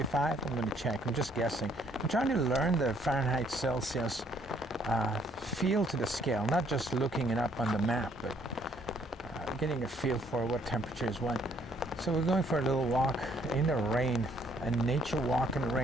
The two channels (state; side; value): normal; both; correlation 0.66